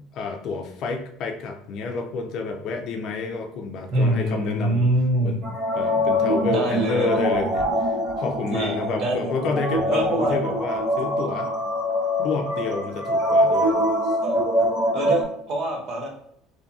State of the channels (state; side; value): normal; both; correlation 0.48